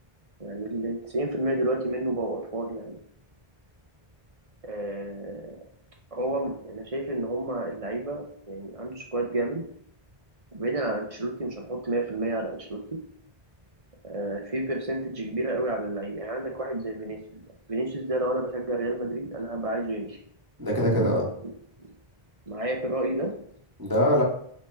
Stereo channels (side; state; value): left; late; 1.6 ms